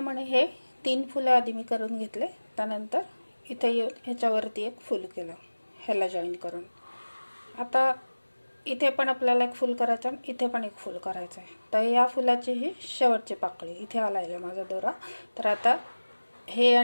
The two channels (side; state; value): both; inverted; correlation -1.00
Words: हे 3 फुलं आधी मी करून घेतले, त्यानंतर इथे येऊन ह्याच्यावरती एक फुल केलं ह्याला जॉईन करून. आता इथे पण आपल्याला एक फुल करायचं आणि इथे पण एक फुल करायचं आहे. तर या फुलाची ही शेवटची पाकळी इथे आला आहे माझा दोरा. तर आता हे